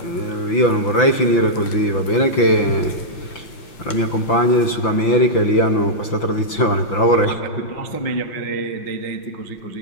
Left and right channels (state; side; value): late; right; 5.9 ms